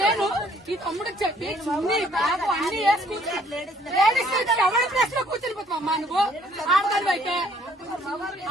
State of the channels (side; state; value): both; normal; correlation 0.62